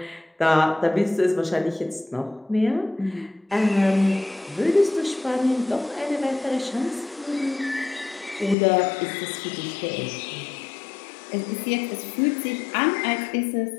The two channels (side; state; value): right; drops out; at 8.6 s